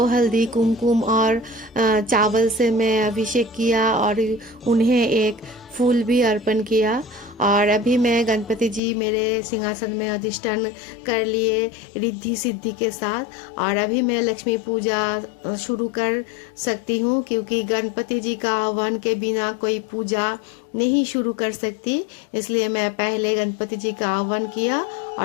हल्दी कुमकुम और चावल से मैं अभिषेक किया और उन्हें एक फूल भी अर्पण किया। और अभी मैं गणपति जी मेरे सिंहासन में अधिष्ठान कर लिए रिद्धि सिद्धि के साथ। और अभी मैं लक्ष्मी पूजा शुरू कर सकती हूँ, क्योंकि गणपति जी का आह्वान के बिना कोई पूजा नहीं शुरू कर सकती। इसलिए मैं पहले गणपति जी का आह्वान किया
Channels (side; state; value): right; drops out; at 8.8 s